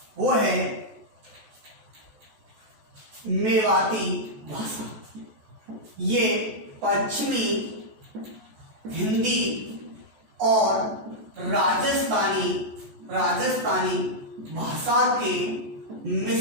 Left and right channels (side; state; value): left; late; 14 ms